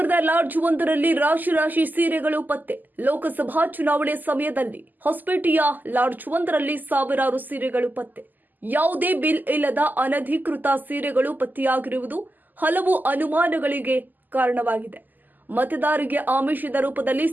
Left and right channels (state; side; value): late; left; 0.086 ms